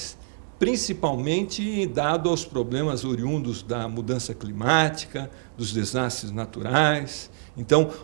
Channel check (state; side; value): silent; left; digital silence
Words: principalmente dado aos problemas oriundos da mudança climática, dos desastres naturais. Então,